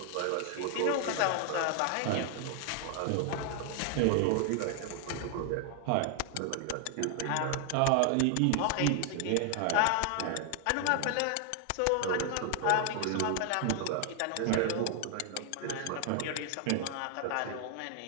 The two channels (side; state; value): both; different; correlation 0.00